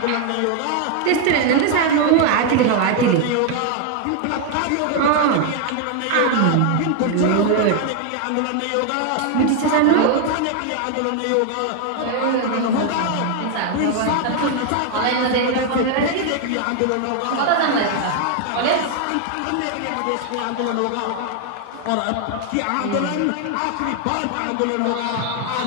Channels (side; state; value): both; different; correlation 0.01